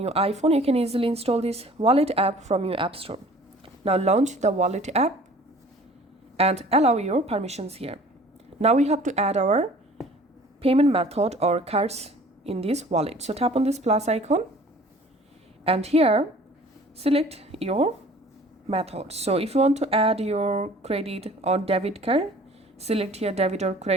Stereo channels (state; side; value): normal; both; correlation 0.49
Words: iPhone. You can easily install this Wallet app from your App Store. Now launch the Wallet app and allow your permissions here. Now we have to add our payment method or cards in this wallet. So tap on this plus icon and here select your method. So if you want to add your credit or debit card, select here debit or